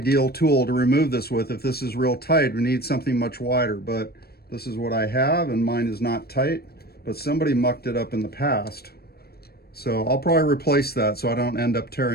tool to remove this with. If this is real tight, we need something much wider, but this is what I have, and mine is not tight, but somebody mucked it up in the past. So I'll probably replace that so I don't end up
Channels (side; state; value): right; late; 0.46 ms